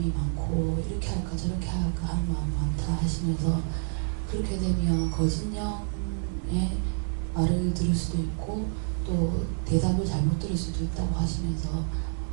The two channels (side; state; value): left; silent; digital silence